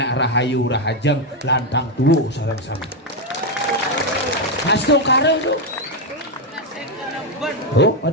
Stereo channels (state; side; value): normal; both; correlation 0.05